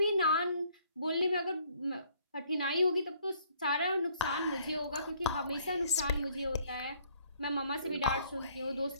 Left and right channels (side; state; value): both; inverted; correlation -0.62